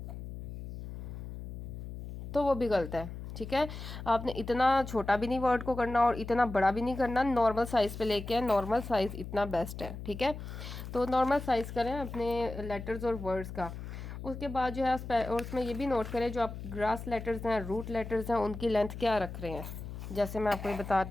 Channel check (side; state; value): left; noise; hum, 9 dB below the sound